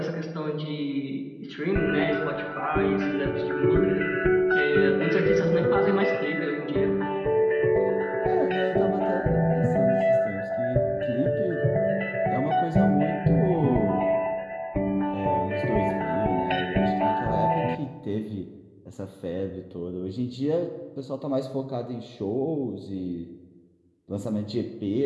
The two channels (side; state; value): both; identical; correlation 1.00